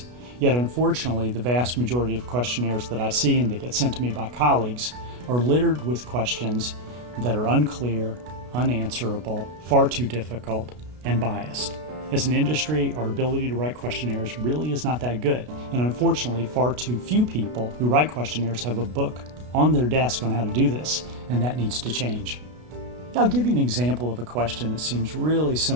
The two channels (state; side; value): late; left; 33 ms